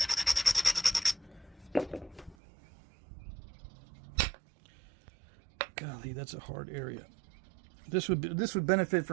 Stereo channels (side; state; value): left; drops out; at 2.4 s